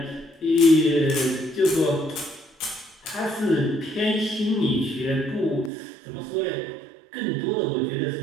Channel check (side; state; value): left; drops out; at 5.7 s